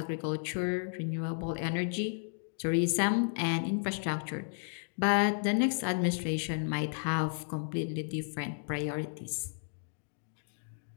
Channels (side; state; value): right; silent; digital silence